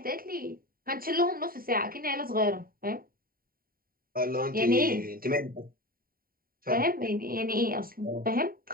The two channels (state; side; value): late; left; 0.42 ms